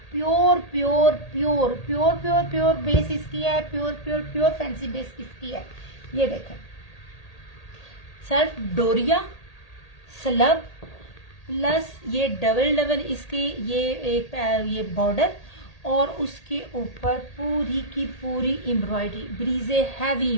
pure pure pure pure pure pure base इसकी है, pure pure pure fancy base इसकी है। ये देखें, सेल्फ डोरिया स्लब प्लस ये डबल इसकी ये एक ये बॉर्डर, और उसके ऊपर पूरी की पूरी एम्ब्रॉयडरी, ब्रीजे हैवी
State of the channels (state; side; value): late; right; 1.8 ms